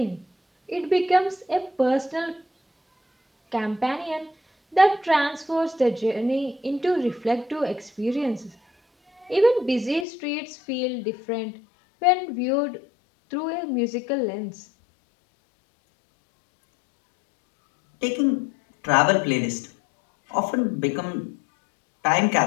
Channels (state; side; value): drops out; right; at 10.1 s